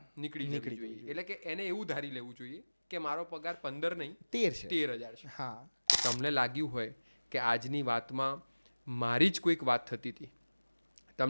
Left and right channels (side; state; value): both; inverted; correlation -1.00